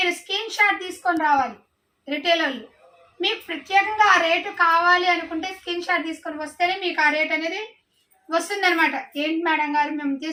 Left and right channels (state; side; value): identical; both; correlation 1.00